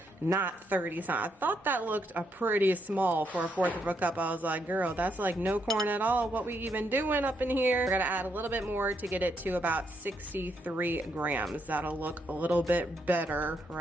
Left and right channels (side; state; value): both; normal; correlation 0.77